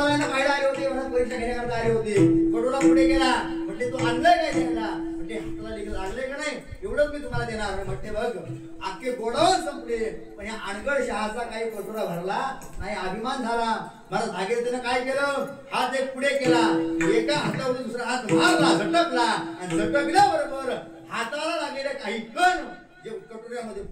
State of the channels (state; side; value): identical; both; correlation 1.00